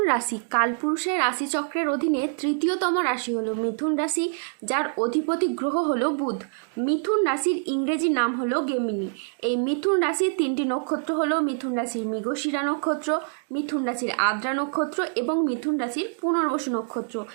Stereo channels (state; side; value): silent; left; 61 dB below the other